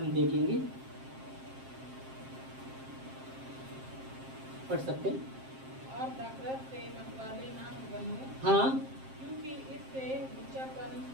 देखेंगे, पढ़ सकते हैं। और नफरत से मतवाले ना बनो, हाँ, क्योंकि इससे लुच्चापन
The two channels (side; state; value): left; late; 7.6 ms